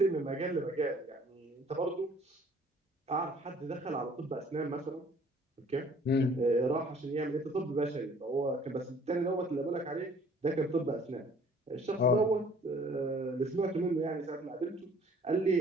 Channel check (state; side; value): normal; both; correlation 0.56